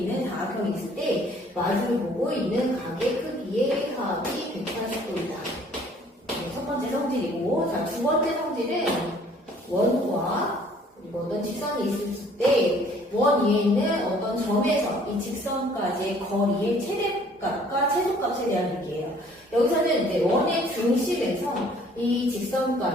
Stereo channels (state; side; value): normal; both; correlation 0.57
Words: 장학형이 있을 때 마주를 보고 있는 각의 크기의 합이 180도이다. 첫 번째 성질이고, 자, 두 번째 성질은 원과 그리고 어떤 직선이 있을 때 원 위에 있는 어떤 점에서 이 직선까지의 거리의 최대값과 최소값에 대한 얘기예요. 여기서는 이제 원의 중심에서 이